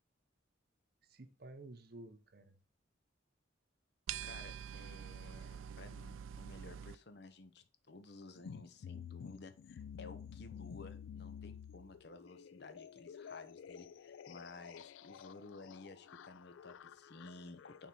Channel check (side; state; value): both; normal; correlation 0.29